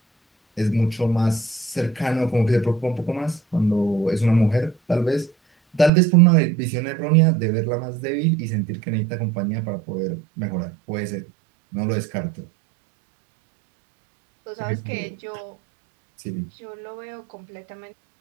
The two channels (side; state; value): left; drops out; at 5.9 s